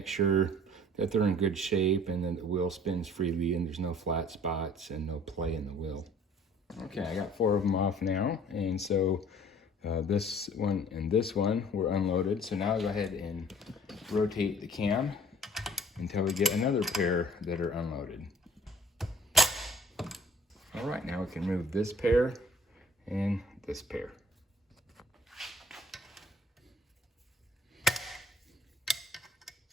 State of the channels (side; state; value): both; normal; correlation 0.54